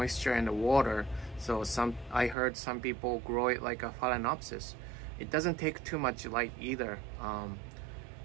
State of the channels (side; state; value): left; drops out; at 2.4 s